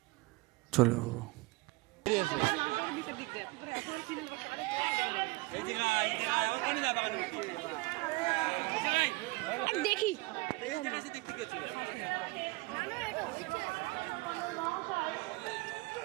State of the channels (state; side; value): quieter; left; 23.5 dB